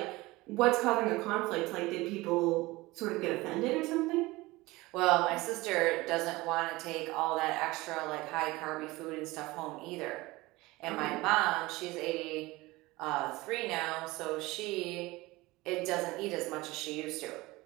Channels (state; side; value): quieter; left; 20.7 dB